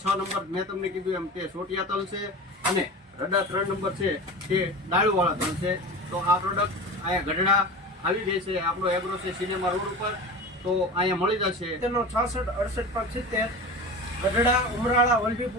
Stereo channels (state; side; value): normal; both; correlation 0.31